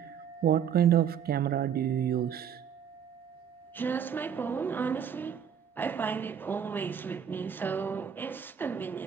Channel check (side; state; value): left; quieter; 8.1 dB